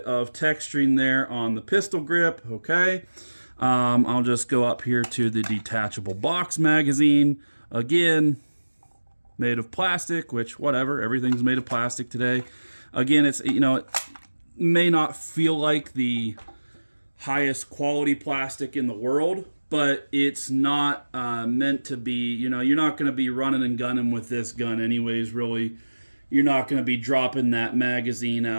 of texturing there on the pistol grip. Okay. I'll just go up here to the detachable box magazine. Again, made of plastic, which whatever, everything's made of plastic today. Again, it's, it may not feel like the highest quality plastic in the world, but it's not meant to be, you're not going to be running and gunning with this gun anyways, really. You're not going to be dropping that magazine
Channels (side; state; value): both; inverted; correlation -1.00